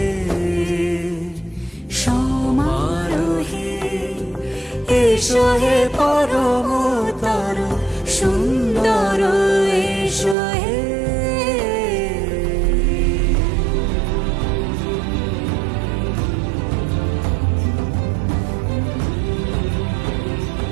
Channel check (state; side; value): drops out; left; at 10.4 s